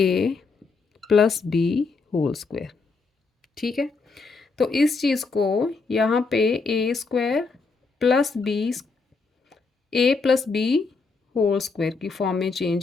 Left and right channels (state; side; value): quieter; right; 4.3 dB